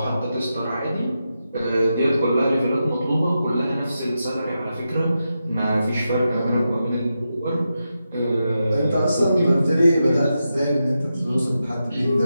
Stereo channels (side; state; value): both; inverted; correlation -0.88